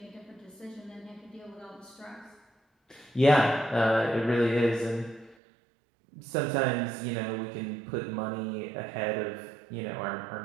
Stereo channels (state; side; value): drops out; left; at 5.4 s